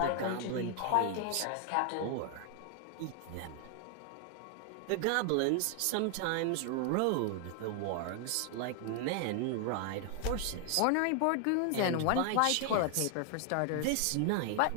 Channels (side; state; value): both; different; correlation 0.00